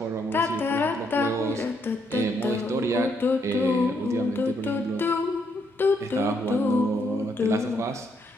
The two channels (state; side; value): normal; both; correlation 0.74